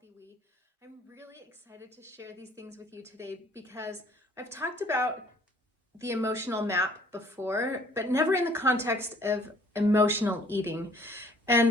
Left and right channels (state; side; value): normal; both; correlation 0.57